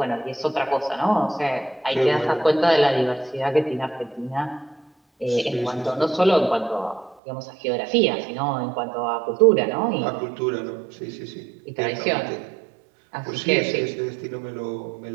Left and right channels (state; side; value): drops out; left; at 7.2 s